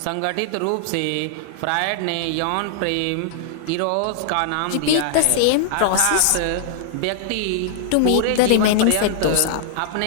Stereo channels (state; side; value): different; both; correlation -0.01